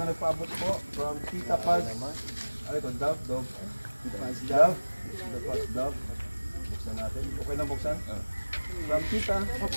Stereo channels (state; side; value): inverted; both; correlation -1.00